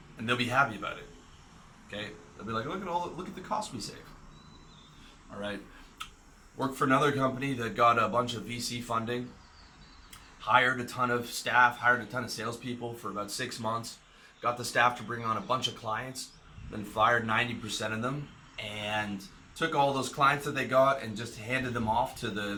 and they'll be happy about it. Okay, they'll be like, look at the cost we save. All right. Worked for another company that got a bunch of VC funding, hired a ton of staff, hired a ton of salespeople for about 6 months, got the staff to bring on a bunch of clients, then fired 90% of them, and took all those clients that they got and just handed them off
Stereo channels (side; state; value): both; identical; correlation 1.00